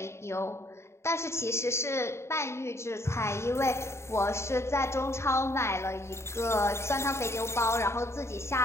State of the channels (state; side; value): late; right; 0.13 ms